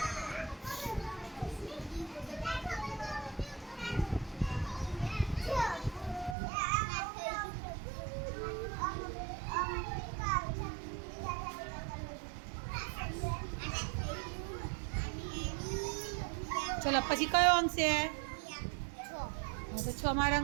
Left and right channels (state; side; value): drops out; left; at 6.4 s